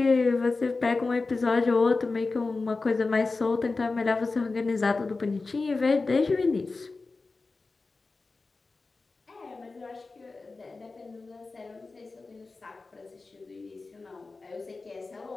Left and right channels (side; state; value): right; quieter; 3.8 dB